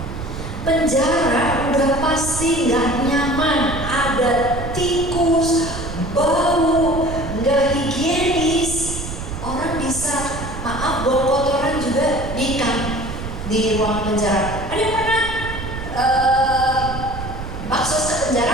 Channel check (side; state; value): right; noise; rumble, 8 dB below the sound